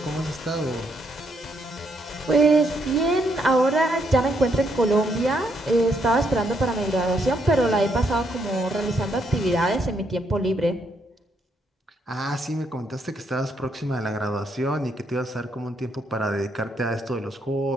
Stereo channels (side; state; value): both; normal; correlation 0.75